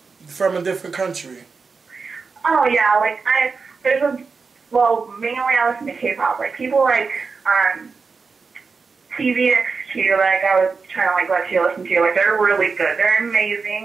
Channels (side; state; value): left; quieter; 4.8 dB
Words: from a different country? Oh, yeah, like, mainly I listen to K-pop. Like, people like, TVXQ, like, I was trying to, like, let you listen to. Like, they're really good. They're